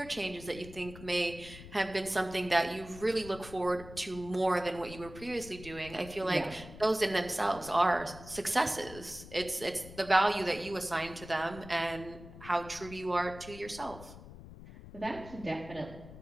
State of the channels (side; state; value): left; noise; rumble, 15 dB below the sound